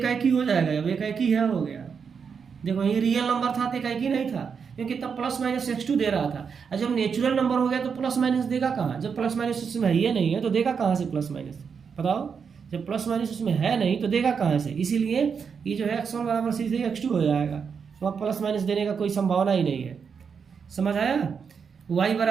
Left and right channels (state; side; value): quieter; left; 6.3 dB